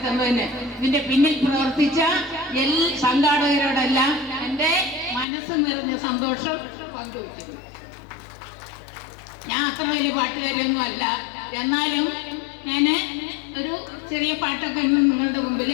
തന്നതിന് ഇതിന്റെ പിന്നിൽ പ്രവർത്തിച്ച സംഘാടകരോടെല്ലാം എൻ്റെ മനസ്സ് നിറഞ്ഞ സന്തോഷം പങ്കുവയ്ക്കുന്നു. ഞാൻ അത്ര വലിയ പാട്ടുകാരിയൊന്നും അല്ല, എന്നാലും ഞാൻ ഒരു ചെറിയ പാട്ടൊക്കെ നിങ്ങളുടെ മുമ്പിൽ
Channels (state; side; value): drops out; right; at 5.2 s